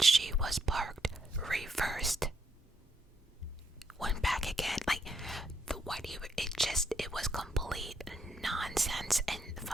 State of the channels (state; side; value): normal; both; correlation 0.75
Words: she was parked, reversed, went back again. Like it was complete nonsense. And